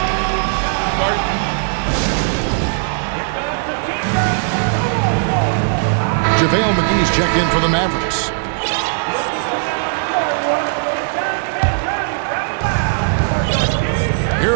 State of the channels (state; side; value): silent; left; digital silence